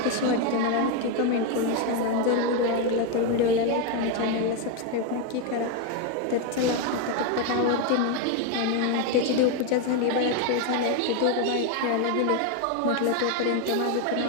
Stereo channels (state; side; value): different; both; correlation 0.02